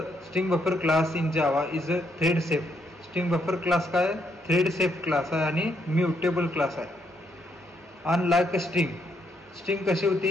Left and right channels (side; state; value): both; normal; correlation 0.75